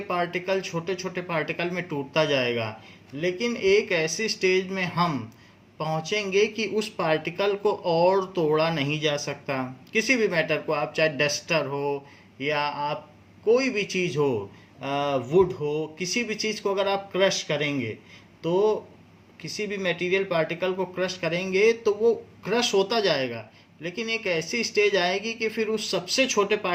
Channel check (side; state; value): both; identical; correlation 1.00